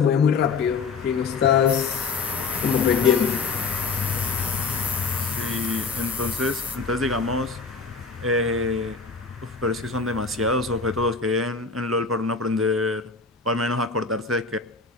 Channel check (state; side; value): quieter; right; 4.7 dB